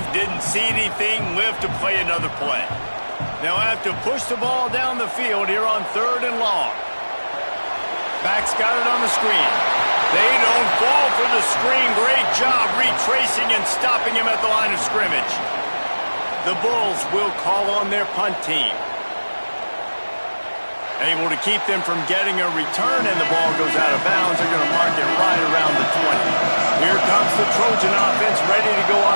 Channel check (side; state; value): both; inverted; correlation -1.00